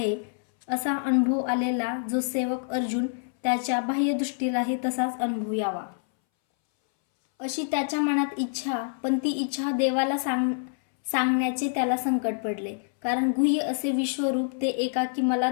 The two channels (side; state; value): right; silent; 60 dB below the other